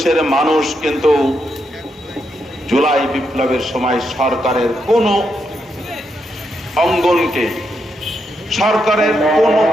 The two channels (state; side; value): normal; both; correlation 0.81